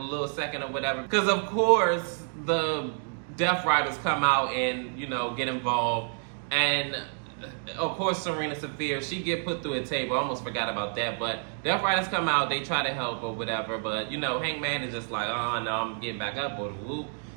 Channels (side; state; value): left; silent; 59 dB below the other